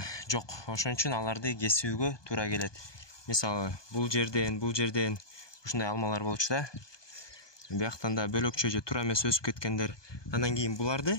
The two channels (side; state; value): right; late; 1.2 ms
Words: жок. Ошон үчүн аларды кесүүгө туура келет. Мисалы, бул жерден ушундай алмалар болчу да. Бияктан да бөлөкчө же туура эмес өсүп кеткендер. Андан кийин